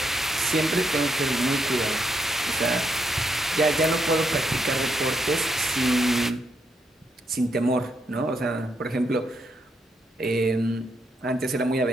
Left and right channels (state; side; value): normal; both; correlation 0.78